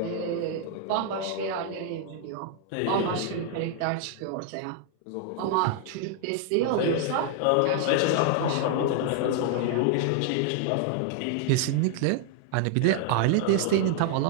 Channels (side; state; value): both; different; correlation 0.00